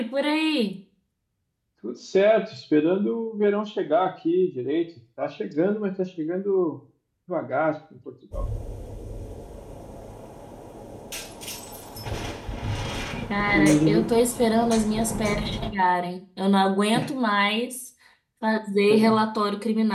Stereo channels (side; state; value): both; identical; correlation 1.00